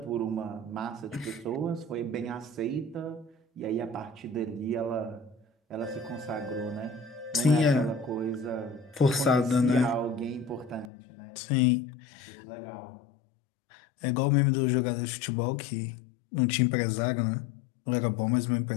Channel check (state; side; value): drops out; right; at 10.9 s